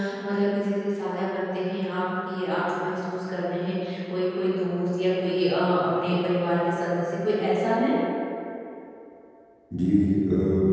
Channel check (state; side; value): identical; both; correlation 1.00